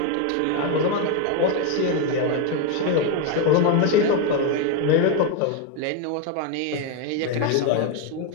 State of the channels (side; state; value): both; different; correlation 0.02